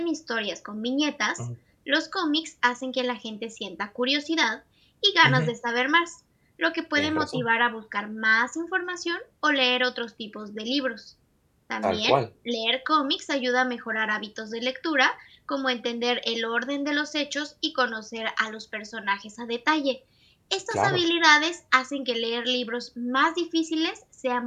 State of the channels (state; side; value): identical; both; correlation 1.00